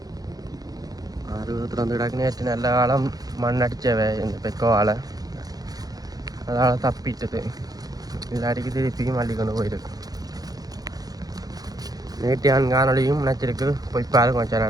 6 திறந்து கிடக்கு. நேற்று நல்ல காலம் மண் அடித்தவை இந்த பெக்கோவால், அதனால் தப்பிட்டது. இதில் அடிக்க திருப்பியும் அள்ளி கொண்டு போயிருக்கு. நேற்று காணொலியும் நினச்சிருக்கு, போய் பாருங்க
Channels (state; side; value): late; left; 0.18 ms